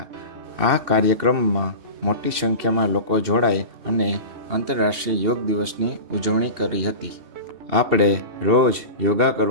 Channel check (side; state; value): left; late; 2.7 ms